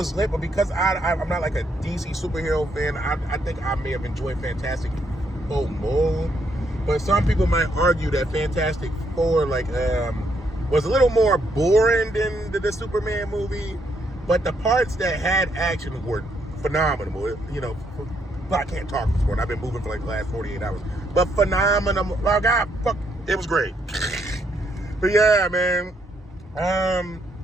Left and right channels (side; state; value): both; normal; correlation 0.74